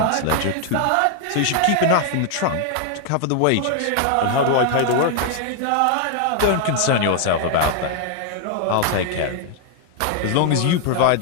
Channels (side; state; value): both; different; correlation 0.00